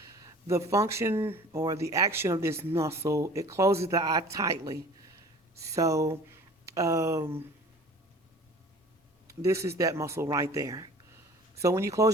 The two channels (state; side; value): normal; both; correlation 0.46